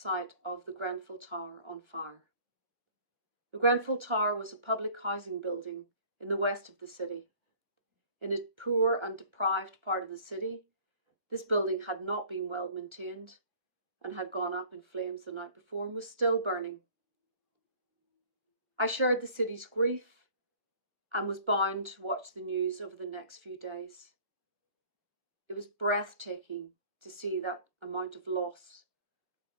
of the Grenfell Tower on fire. The Grenfell Tower was a public housing building in the west of the city. In a poor and deprived part of the city, this building had not been well maintained and had gone up in flames the night before and was still burning. I shared the city's grief and was bound to watch the news over the next few days. It was breathtaking to see that amount of loss.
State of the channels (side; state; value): left; late; 1.1 ms